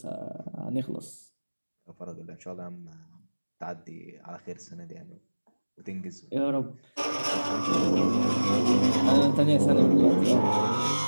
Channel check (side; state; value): both; inverted; correlation -1.00